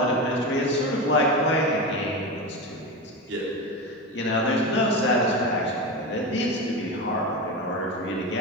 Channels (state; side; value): normal; both; correlation 0.21